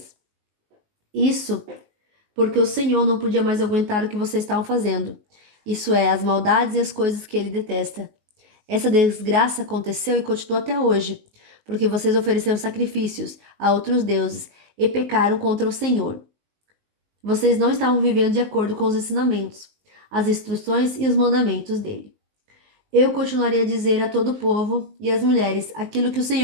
Isso porque o Senhor não podia mais aguentar o que vocês estavam fazendo. Isso é, as maldades e as coisas que ele detesta. Essa desgraça aconteceu e continua até hoje, porque vocês ofereceram sacrifícios a outros deuses e pecaram contra o Senhor. Vocês não estavam vivendo de acordo com os ensinamentos, as instruções e os mandamentos dele. Eu continuaria a dizer a todo o povo e às mulheres aquilo que o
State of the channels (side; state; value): left; late; 19 ms